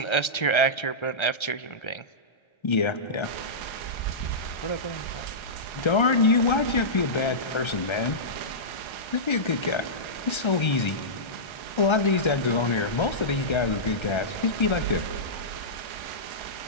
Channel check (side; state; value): right; late; 1.3 ms